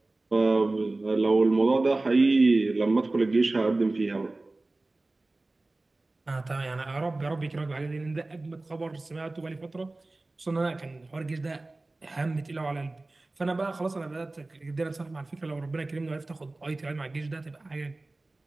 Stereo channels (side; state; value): left; quieter; 3.0 dB